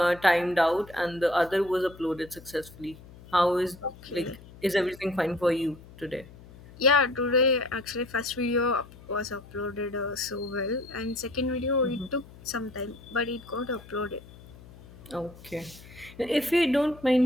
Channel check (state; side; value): noise; left; hum, 20 dB below the sound